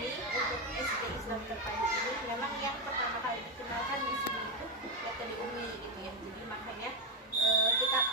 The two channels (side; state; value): both; normal; correlation 0.05